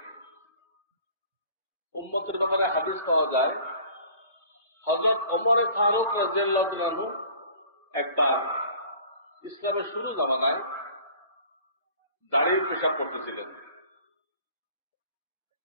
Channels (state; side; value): inverted; both; correlation -0.49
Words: উম্মতের ব্যাপারে হাদিস পাওয়া যায়, হযরত ওমর ফারুক রাদিয়াল্লাহু আনহু একবার ইসলামের শুরু জামানায় দাঁড়িয়ে পেশাব করতেছিলেন।